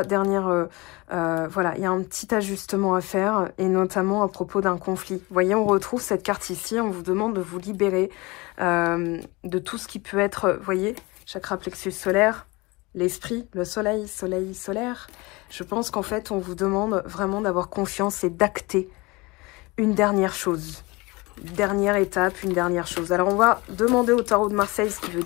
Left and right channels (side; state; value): right; quieter; 24.3 dB